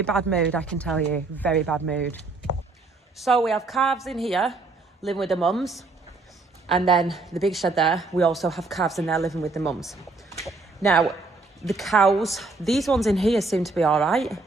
bad mood, I can tell you, very bad mood. So we have calves in here living with the mums, and then the big shed there, we also have calves in there living with the mums. Now the cows, these ones in here seem to be all right,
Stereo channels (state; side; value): quieter; left; 3.6 dB